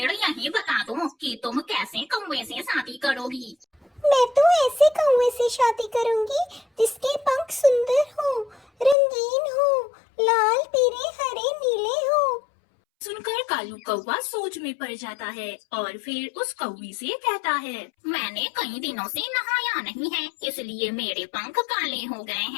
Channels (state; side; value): drops out; right; at 9.0 s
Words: यही बता दो कि तुम कैसे कौवे से शादी करोगी। मैं तो ऐसे कौवे से शादी करूंगी जिसके पंख सुंदर हो, रंगीन हो, लाल पीले हरे नीले हो। सुनकर कालू कौवा सोच में पड़ जाता है और फिर उस कौवी से कहता है, मैंने कई दिनों से नहाया नहीं है, इसलिए मेरे पंख काले हो गए